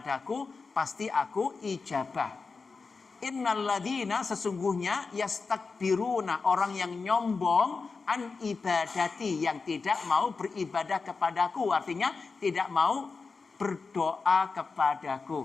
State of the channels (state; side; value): quieter; right; 4.5 dB